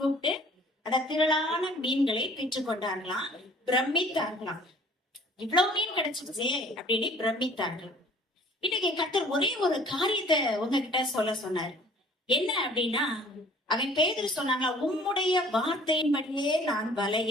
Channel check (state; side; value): normal; both; correlation 0.51